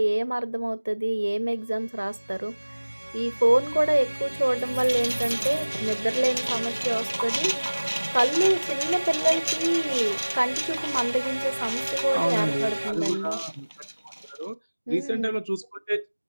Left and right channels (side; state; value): both; inverted; correlation -1.00